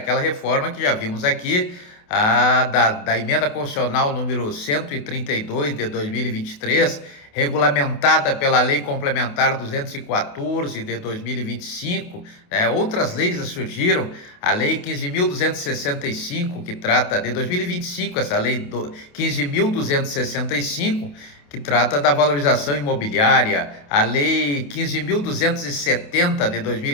reforma que já vimos aqui, da emenda constitucional número 132 de 2023, regulamentada pela Lei Complementar 214 de 2025, né? Outras leis surgiram, a Lei 15.265, que trata de 2025, essa Lei 15.265, que trata da valorização imobiliária, a Lei 15.270 de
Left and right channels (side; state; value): right; late; 28 ms